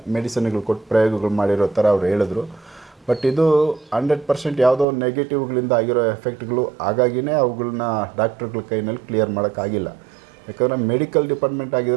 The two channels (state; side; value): drops out; left; at 4.9 s